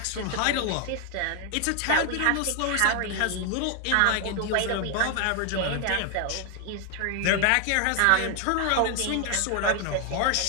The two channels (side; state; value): both; different; correlation 0.00